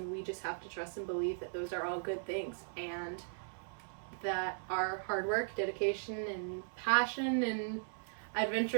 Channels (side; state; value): left; silent; 52 dB below the other